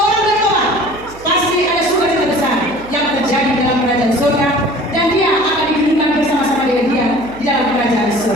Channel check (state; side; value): noise; right; hum, 20 dB below the sound